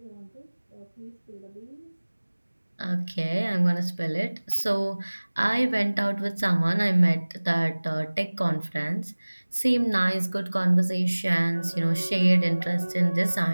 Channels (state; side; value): inverted; both; correlation -1.00